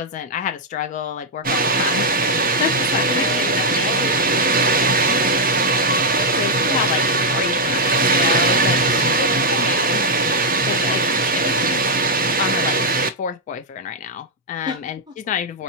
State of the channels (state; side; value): normal; both; correlation -0.02